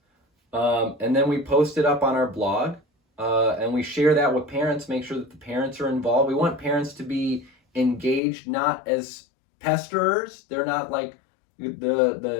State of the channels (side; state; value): right; drops out; at 8.2 s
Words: And then we post it up on our blog, and we share that with parents, make sure that the parents are involved. We want parents to be engaged, not as pesterers. They're not like